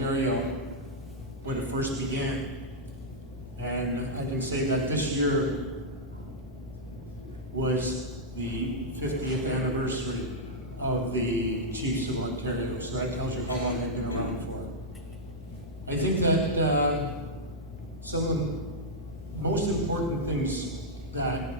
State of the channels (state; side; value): normal; both; correlation -0.06